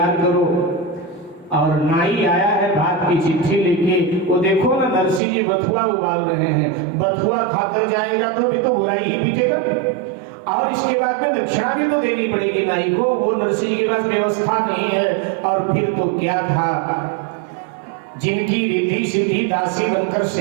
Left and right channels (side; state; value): left; drops out; at 5.2 s